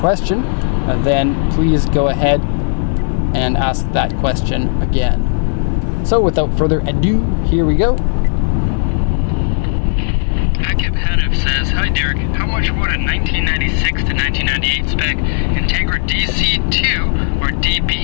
then please go ahead and ask that question again. So without further ado, here we go. Akib Hanif says, "Hi Derek, how much would a 1996 to 1998 spec Integra DC2 or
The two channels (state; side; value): silent; right; digital silence